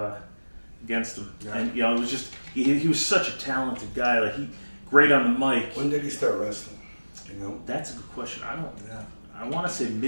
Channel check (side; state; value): both; inverted; correlation -1.00